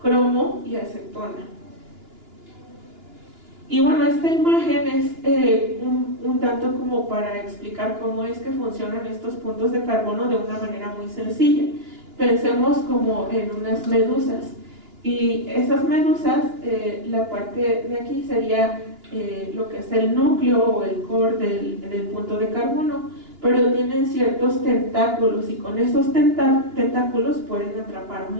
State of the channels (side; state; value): left; late; 2.9 ms